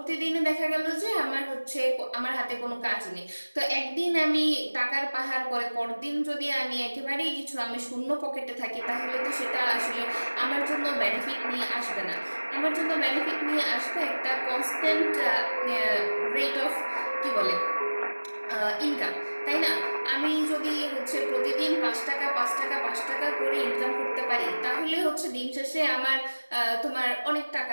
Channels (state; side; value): inverted; both; correlation -1.00